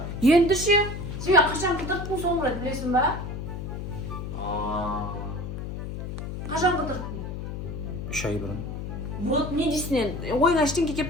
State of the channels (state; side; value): noise; left; hum, 6 dB below the sound